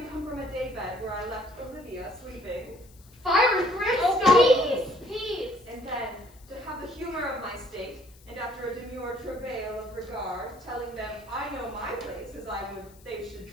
come from a daybed where I left Olivia sleeping, Fire and brimstone! Oh, peace. and then to have the humor of my state, and after a demure travail of regard, telling them I know my place as I would they should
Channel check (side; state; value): left; noise; hiss, 26 dB below the sound